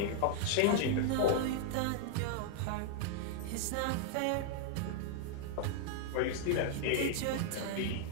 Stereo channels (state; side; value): different; both; correlation -0.01